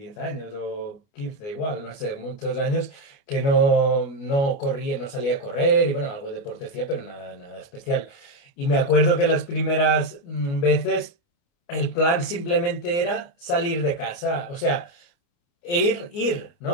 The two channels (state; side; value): late; right; 29 ms